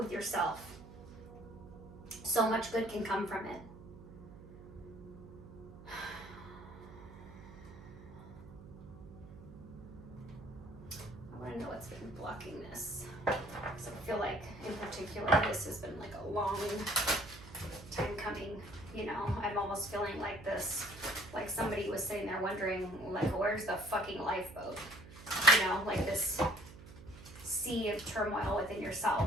yourself. So much good can come from it. I want to know what's been blocking this, because I feel like in particular this has been like a long time coming. I'm almost feeling like this, like somebody was sitting there wondering, like, where's the fucking lifeboat? Like this sea of turmoil within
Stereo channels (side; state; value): right; noise; hum, 16 dB below the sound